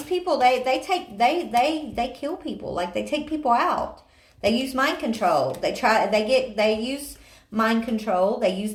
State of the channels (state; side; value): identical; both; correlation 1.00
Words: people they kill people. Like they take people out. They use mind control. They use mind control. They use